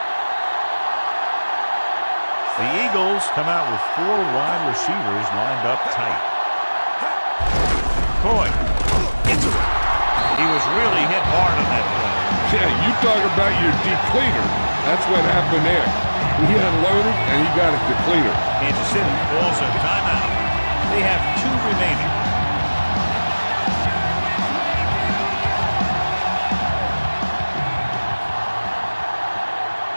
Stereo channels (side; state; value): both; inverted; correlation -1.00